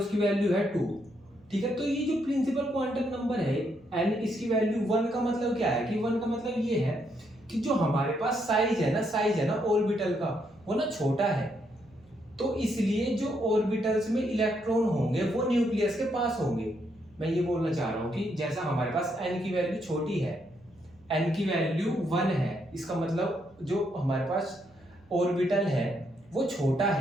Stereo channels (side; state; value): right; noise; hum, 29 dB below the sound